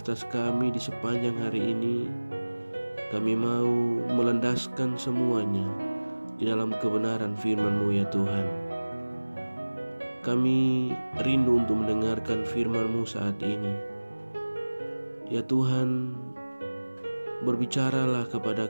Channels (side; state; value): both; inverted; correlation -1.00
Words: kami di sepanjang hari ini, kami mau melandaskan semuanya di dalam kebenaran firman-Mu ya Tuhan. Kami rindu untuk mendengarkan firman-Mu saat ini. Ya Tuhan, berbicaralah kepada